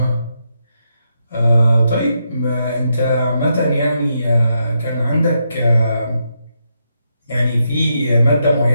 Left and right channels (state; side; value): inverted; both; correlation -0.82